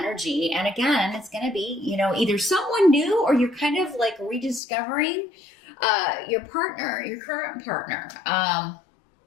And again, it's going to be, either someone new, or you're kind of like rediscovering your partner, your current partner.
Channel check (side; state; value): right; drops out; at 4.6 s